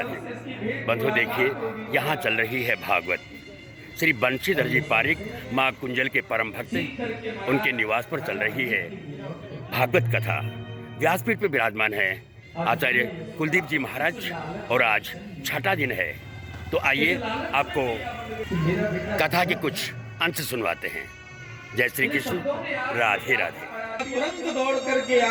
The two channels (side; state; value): both; identical; correlation 1.00